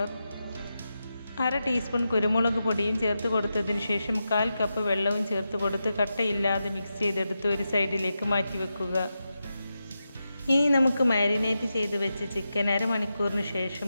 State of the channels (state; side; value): inverted; both; correlation -0.89